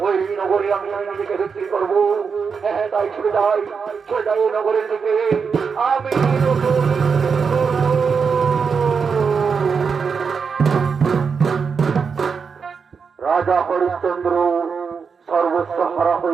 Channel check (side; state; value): left; quieter; 5.8 dB